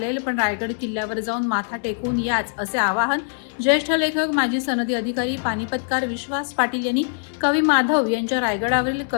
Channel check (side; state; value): right; silent; 64 dB below the other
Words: पण रायगड किल्ल्यावर जाऊन माथा टेकून याच, असे आवाहन ज्येष्ठ लेखक माजी सनदी अधिकारी पानिपतकार विश्वास पाटील यांनी कवी माधव यांच्या रायगडावरील